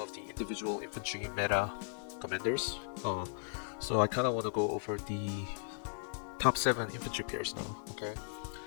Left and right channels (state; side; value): silent; right; 53 dB below the other